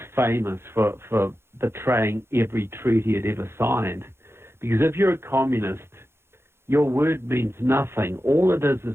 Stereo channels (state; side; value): late; left; 0.12 ms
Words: famous for betraying every treaty it ever signed. Because if you're a communist, your word means nothing. All it is